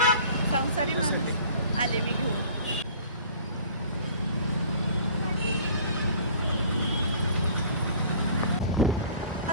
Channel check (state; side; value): inverted; both; correlation -0.49